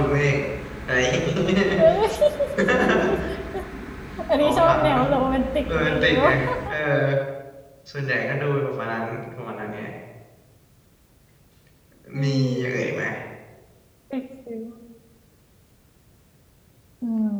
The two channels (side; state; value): both; identical; correlation 1.00